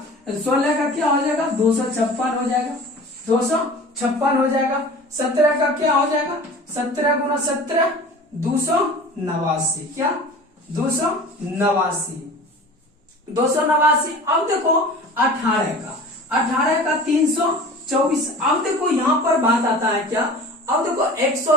16 का क्या हो जाएगा 256 हो जाएगा, 256 हो जाएगा। 17 का क्या हो जाएगा 17 गुना 17 289, क्या 289। अब देखो 18 का 324। अब देखो यहाँ पर बात आता है क्या, अब देखो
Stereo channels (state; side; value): normal; both; correlation 0.40